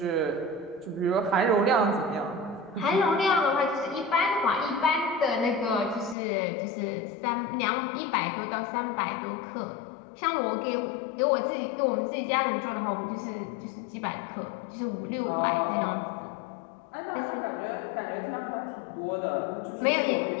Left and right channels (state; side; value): drops out; right; at 6.2 s